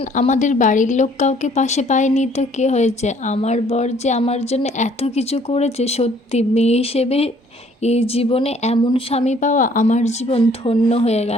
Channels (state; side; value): normal; both; correlation 0.60